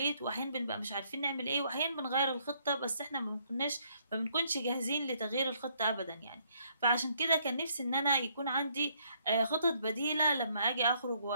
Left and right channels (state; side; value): inverted; both; correlation -0.68